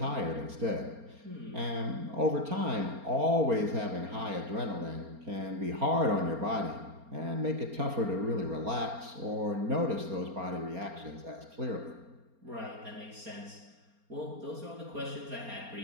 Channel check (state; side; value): late; left; 4.3 ms